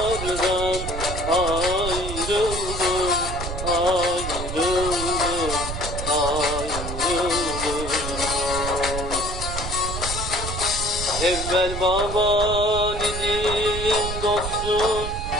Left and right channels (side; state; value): right; noise; rumble, 6 dB below the sound